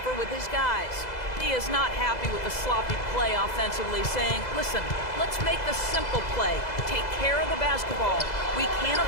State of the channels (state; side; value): late; right; 2.0 ms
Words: with his guys. He is not happy with the sloppy play offensively, saying, listen, let's make the simple play. Take care of the basketball. We can't